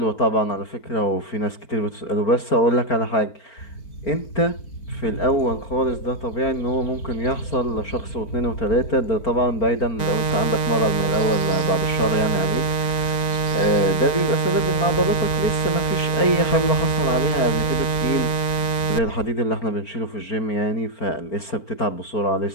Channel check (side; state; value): right; late; 4.5 ms